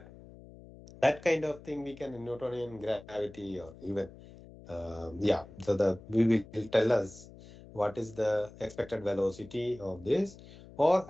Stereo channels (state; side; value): noise; left; hum, 19 dB below the sound